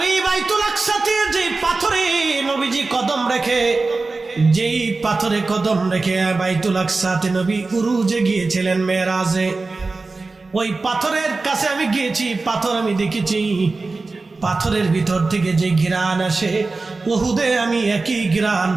বাইতুল আকসাতে যে পাথরে নবীজি কদম রেখে, যেই পাথরে কদম রেখে বাইতুল আকসাতে নবী উরুজে গিয়েছিলেন মেরাজে, ওই পাথরের কাছে আমি গিয়েছি। পাথর আমি দেখেছি, পাথরের ভিতর থেকে যে ঘিরান আসে উহুদে আমি একই ঘ্রাণ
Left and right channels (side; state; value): left; quieter; 3.7 dB